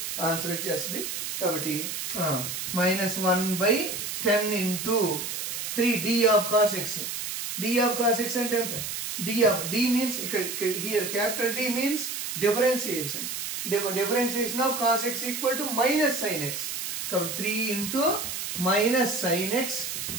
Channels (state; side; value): noise; right; hiss, 4 dB below the sound